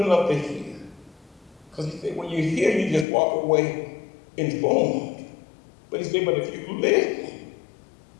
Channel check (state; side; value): drops out; right; at 3.1 s